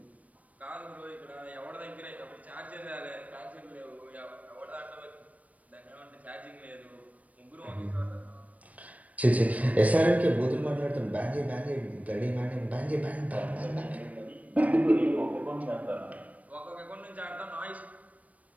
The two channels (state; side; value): late; left; 0.070 ms